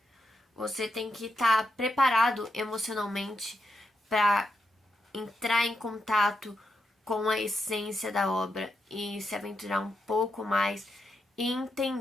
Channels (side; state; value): both; normal; correlation 0.83